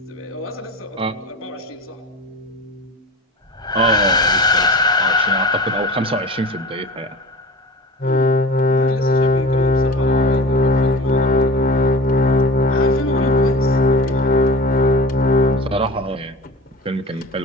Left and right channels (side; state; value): both; normal; correlation 0.36